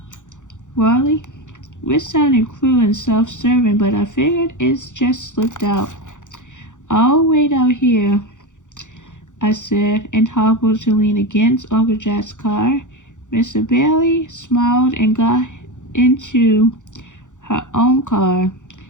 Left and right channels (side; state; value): right; late; 0.86 ms